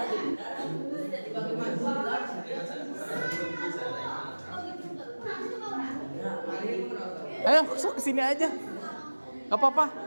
Ayo, sok kesini aja. Gak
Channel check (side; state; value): both; inverted; correlation -1.00